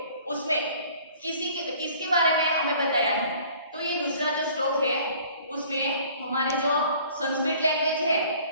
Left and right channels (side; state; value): both; inverted; correlation -0.52